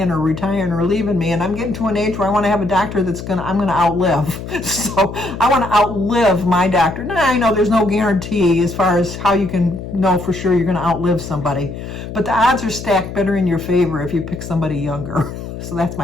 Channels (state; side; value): noise; left; hum, 9 dB below the sound